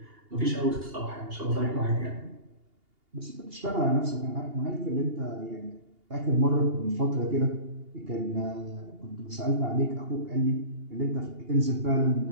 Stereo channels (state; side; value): late; left; 2.8 ms